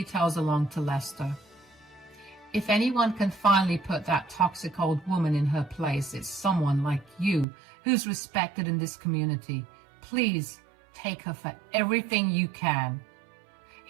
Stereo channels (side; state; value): left; drops out; at 7.5 s